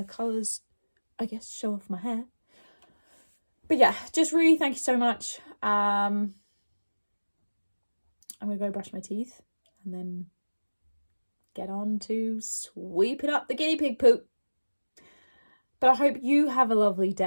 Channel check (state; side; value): inverted; both; correlation -1.00